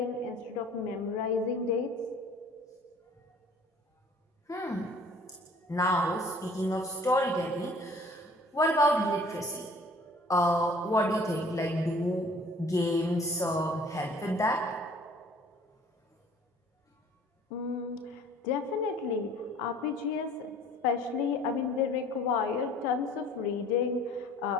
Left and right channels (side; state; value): both; normal; correlation 0.52